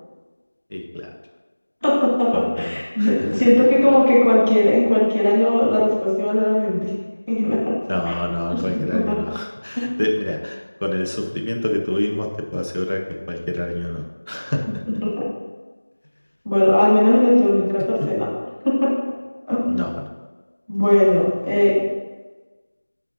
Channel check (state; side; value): inverted; both; correlation -1.00